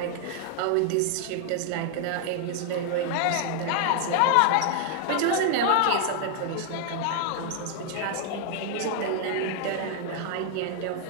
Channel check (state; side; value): different; both; correlation 0.00